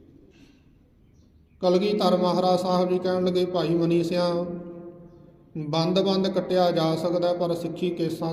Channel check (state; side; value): identical; both; correlation 1.00